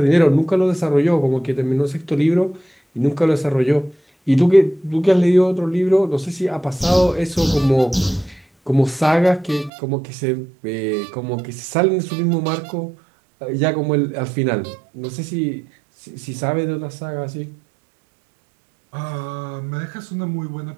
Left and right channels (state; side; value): drops out; left; at 9.7 s